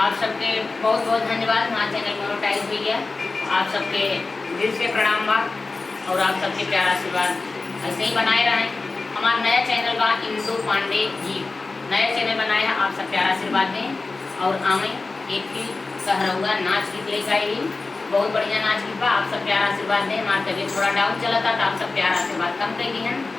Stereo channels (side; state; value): right; quieter; 3.7 dB